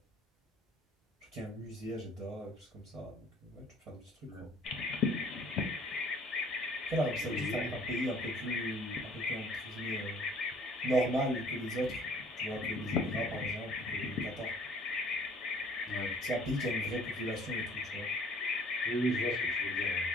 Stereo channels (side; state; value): both; normal; correlation 0.55